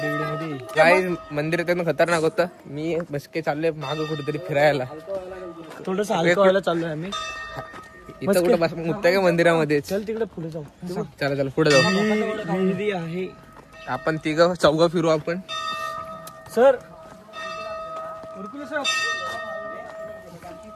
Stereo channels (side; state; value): both; identical; correlation 1.00